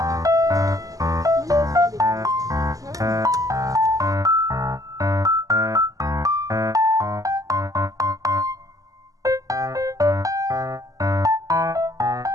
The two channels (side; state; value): left; late; 0.17 ms